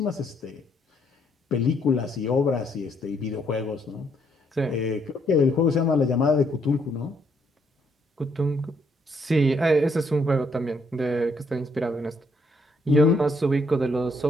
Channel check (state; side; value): normal; both; correlation 0.71